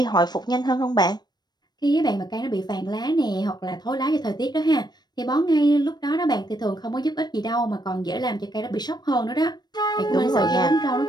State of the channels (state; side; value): late; right; 0.20 ms